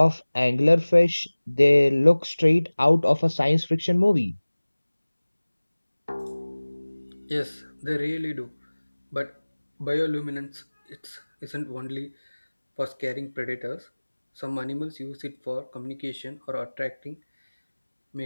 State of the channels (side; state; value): both; inverted; correlation -1.00